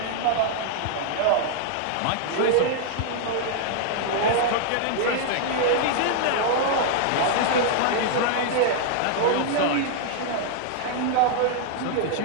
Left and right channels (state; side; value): different; both; correlation -0.01